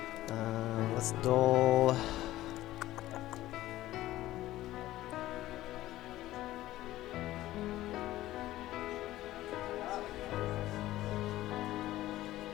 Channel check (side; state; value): right; quieter; 15.5 dB